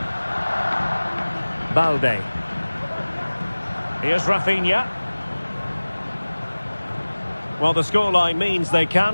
Balde. Here's Rafinha. Well, the scoreline means they can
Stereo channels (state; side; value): inverted; both; correlation -1.00